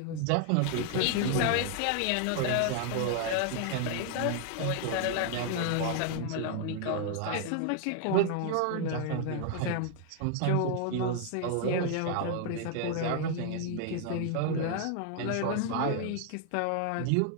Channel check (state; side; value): different; both; correlation 0.00